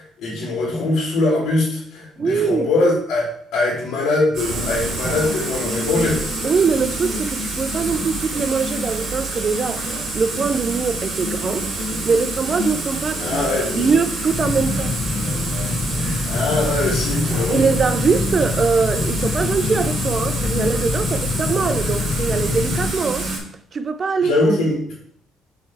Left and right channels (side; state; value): both; normal; correlation 0.74